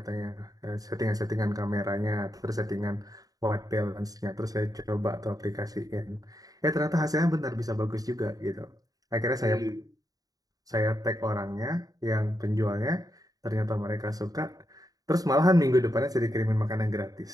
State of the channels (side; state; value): left; late; 0.18 ms